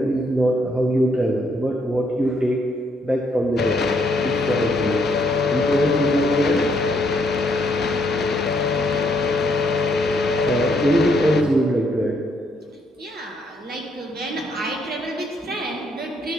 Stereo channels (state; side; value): normal; both; correlation 0.72